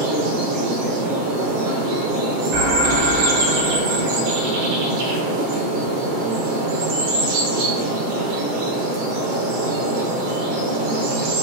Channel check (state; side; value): late; left; 7.7 ms